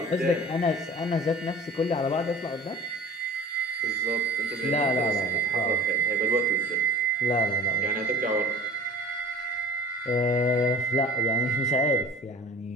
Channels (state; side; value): normal; both; correlation 0.41